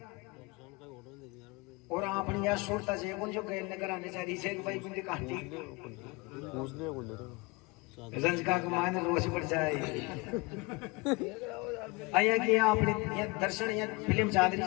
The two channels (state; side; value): quieter; right; 26.0 dB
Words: और आपने यार सुरता जे कौन जो गए नगर आने चाहिए से भाई कुंडी काटी रंजका को माने रोश पड़ जाए। आया कि आपने ये दर्शन ये फिल्म चादरी